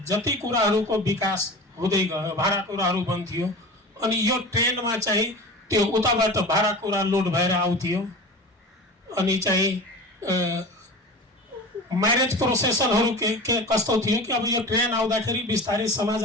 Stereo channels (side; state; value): both; normal; correlation 0.33